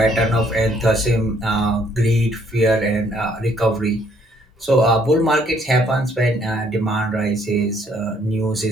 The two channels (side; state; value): both; normal; correlation 0.65